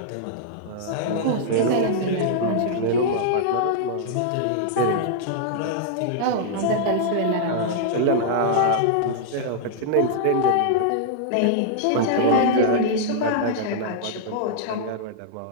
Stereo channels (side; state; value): both; different; correlation -0.01